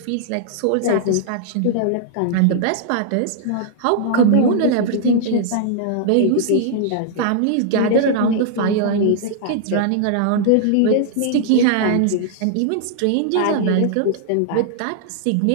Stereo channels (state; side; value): different; both; correlation -0.01